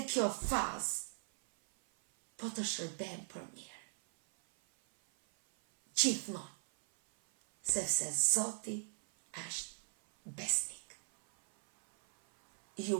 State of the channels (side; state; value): left; silent; 53 dB below the other